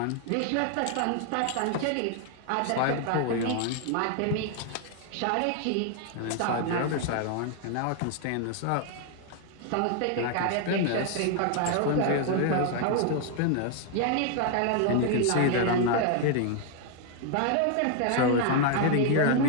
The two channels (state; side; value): different; both; correlation 0.00